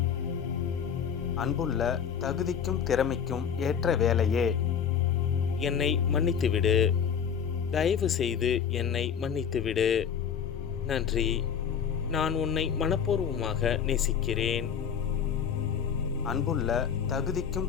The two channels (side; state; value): right; quieter; 7.6 dB